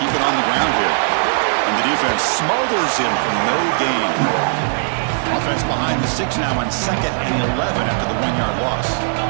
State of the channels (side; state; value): left; silent; digital silence